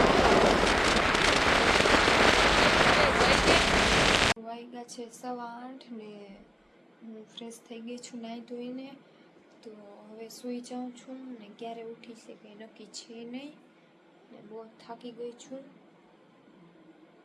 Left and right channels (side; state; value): both; identical; correlation 1.00